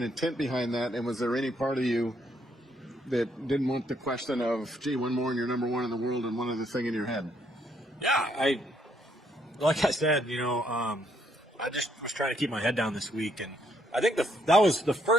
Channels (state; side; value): normal; both; correlation 0.72